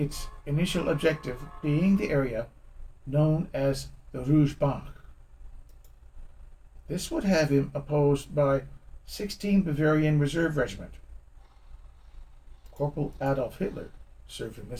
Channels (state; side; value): identical; both; correlation 1.00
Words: initial objective being the area known as the Rouge Bank. This would have him opposed by 16 Bavarian Reserve Regiment. Corporal Adolf Hitler served in